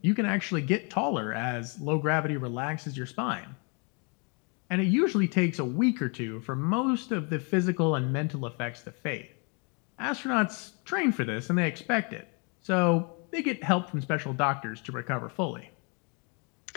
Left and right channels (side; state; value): right; quieter; 34.9 dB